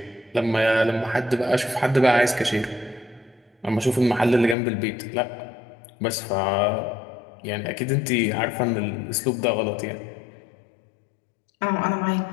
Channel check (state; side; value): drops out; right; at 4.5 s